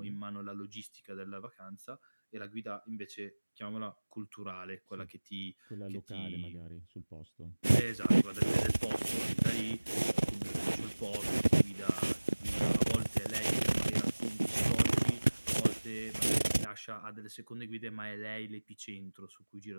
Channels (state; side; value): inverted; both; correlation -1.00